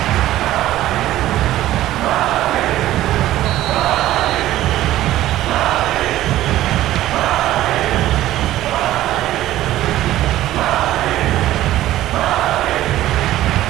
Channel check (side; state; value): left; quieter; 14.4 dB